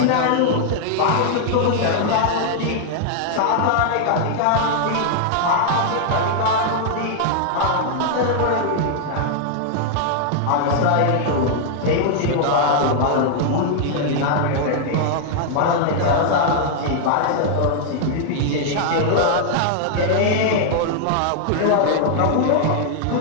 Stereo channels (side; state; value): both; different; correlation 0.00